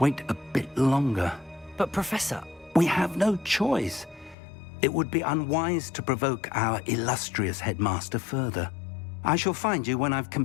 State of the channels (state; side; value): drops out; right; at 4.4 s